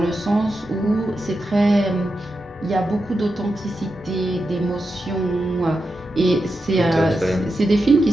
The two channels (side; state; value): both; normal; correlation 0.89